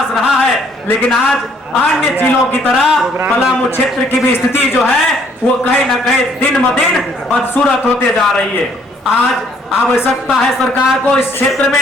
रहा है, लेकिन आज अन्य जिलों की तरह पलामू क्षेत्र की भी स्थिति जो है वो कहीं ना कहीं दिन ब दिन बदसूरत होते जा रही है। आज आवश्यकता है सरकार को इस क्षेत्र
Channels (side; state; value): both; normal; correlation 0.64